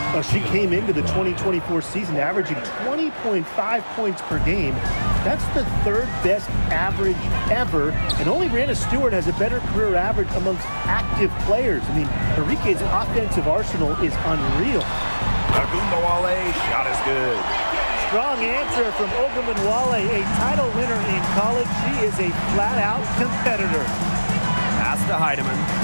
She came into the 2024 season averaging 20.5 points per game. That's the 3rd best average ever, and only Brianna Stewart has a better career average amongst active players. Arike's offensive arsenal is unreal. Ogunbowale, shot is good. Strong answer from Ogunbowale, a title winner in college. She is a flat-out competitor. Pass to Heidemann.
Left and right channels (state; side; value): inverted; both; correlation -1.00